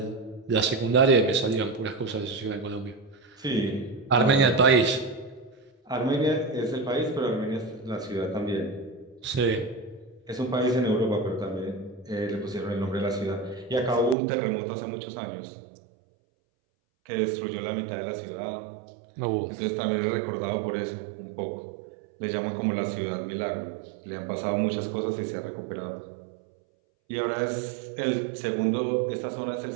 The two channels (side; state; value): left; drops out; at 14.2 s